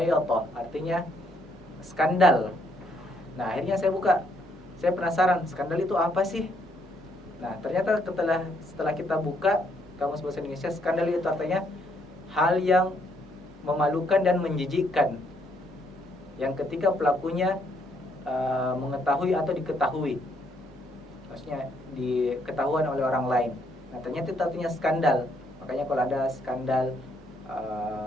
artinya skandal. Nah akhirnya saya buka, saya penasaran skandal itu apa sih? Nah ternyata setelah kita buka kamus bahasa Indonesia, skandal itu artinya hal yang memalukan dan menjijikkan, yang ketika pelakunya mengetahui atau diketahui, maksudnya diketahuan oleh orang lain. Nah ternyata itu artinya skandal. Makanya kalau ada skandal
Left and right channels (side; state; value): both; normal; correlation 0.71